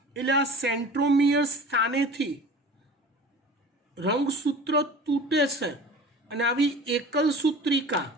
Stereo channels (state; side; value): normal; both; correlation 0.40